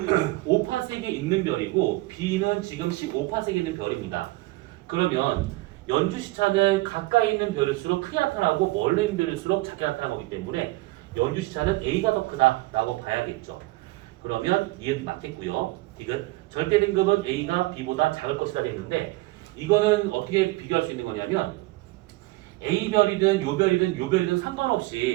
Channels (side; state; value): left; quieter; 20.8 dB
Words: 5파색에 있는 별이고 B는 지금 15파색에 있는 별입니다. 그러면 연주 시차는 가까이 있는 별일수록 크게 나타나고 멀리 있는 별일수록 작게 나타나는 거기 때문에 연주 시차는 A가 더 크다라고 봐야겠죠. 그러면 니은 맞겠고요. 디귿 절대 등급은 A가 B보다 작을 것이다 됐는데 이거는 어떻게 비교할 수 있는 거냐면 A별이든 요별이든